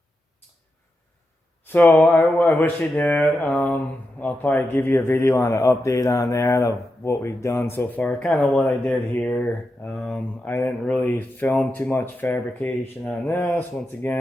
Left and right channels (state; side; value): normal; both; correlation 0.88